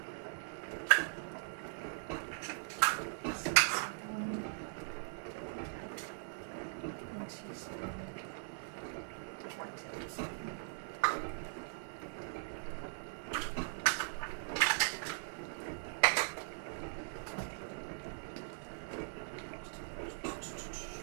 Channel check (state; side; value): silent; left; 51 dB below the other